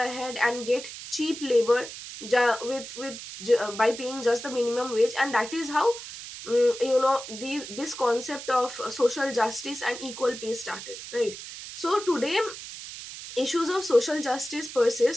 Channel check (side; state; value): right; noise; hiss, 11 dB below the sound